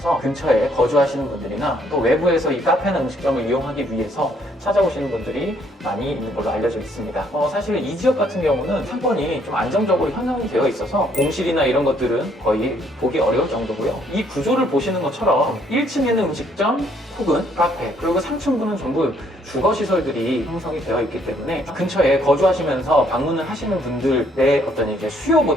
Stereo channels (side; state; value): both; normal; correlation 0.67